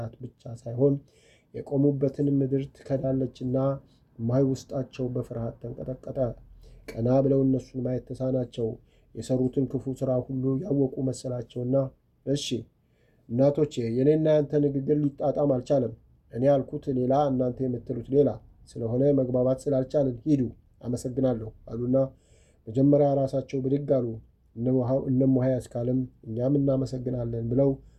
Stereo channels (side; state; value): both; identical; correlation 1.00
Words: ብቻ ሳይሆን የቆሙበትን ምድር ትከዳለችና እማሆይ ውስጣቸው በፍርሃት ተንቀጠቀጠ። ቀና ብለው እነሱን ማየት ተሳናቸው። የሰሩትን ክፉ ሥራ ሁሉ ያወቁ መሰላቸውና እሺ እናቶቼ፣ የኔና ያንተ ንግግር ሊጣጣም አልቻለም። እኔ ያልኩት ሌላ፣ እናንተ የምትሉት ሌላ ስለሆነ መግባባት ስላልቻልን ሂዱ፣ አመሰግናለሁ አሉና መጀመሪያ ራሳቸው ብድግ አሉ። እነ እማሆይ አስካለም እኛም እናመሰግናለን ብለው